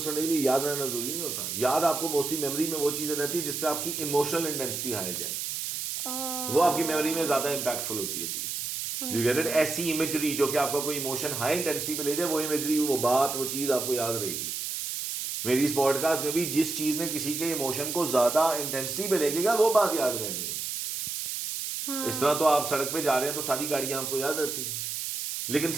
کرنے کے لیے یاد رہنا ضروری نہیں ہوتا. یاد آپ کو موسٹلی میموری میں وہ چیزیں رہتی ہے جس پہ آپ کی ایموشنل انٹینسٹی ہائی جائے, وہ آپ کی میموری میں زیادہ امپیکٹفل ہوتی ہے چیز. You get it. ایسی امیجری جو کہ آپ کا کوئی ایموشن ہائی انٹینسٹی پہ لے جائے, وہ امیجری, وہ بات, وہ چیز آپ کو یاد رہے گی. میری اس پوڈ کاسٹ میں بھی جس چیز نے کسی کے ایموشن کو زیادہ انٹینسٹی پہ لے گا وہ بات یاد رہنی ہے. اس طرح تو آپ سڑک پہ جا رہے ہیں تو ساری گاڑیاں آپ کو یاد رہتی ہیں, لیکن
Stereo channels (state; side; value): noise; right; hiss, 4 dB below the sound